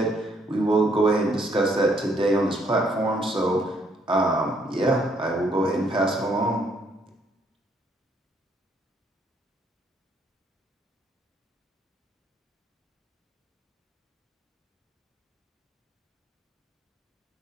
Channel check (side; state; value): both; normal; correlation 0.69